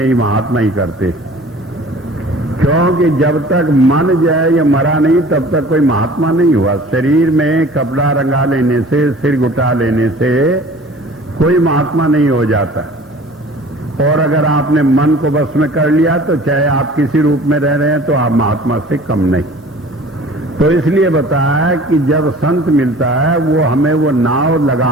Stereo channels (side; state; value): both; normal; correlation 0.46